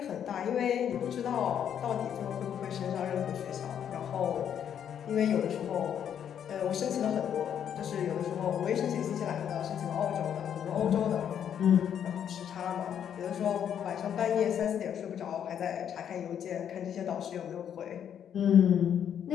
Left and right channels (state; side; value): quieter; right; 9.0 dB